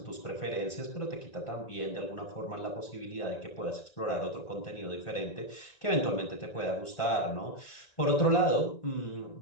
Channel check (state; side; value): late; right; 1.5 ms